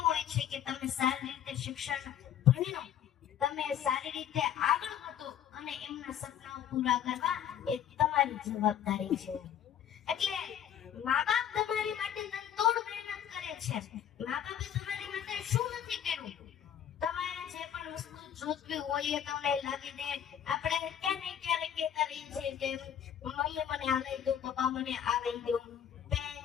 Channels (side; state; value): right; quieter; 9.6 dB